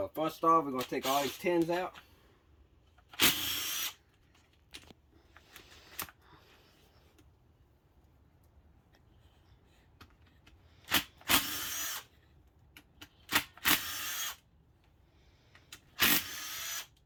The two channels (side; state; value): both; identical; correlation 1.00